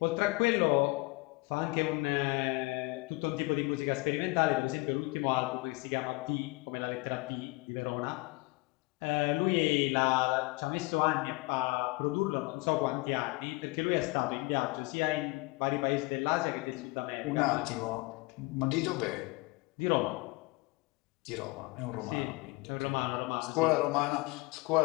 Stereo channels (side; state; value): right; quieter; 24.6 dB